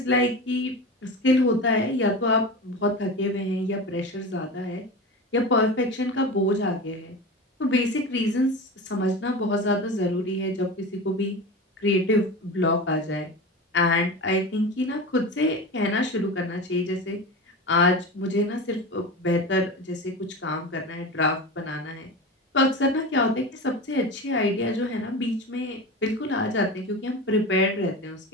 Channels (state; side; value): normal; both; correlation 0.28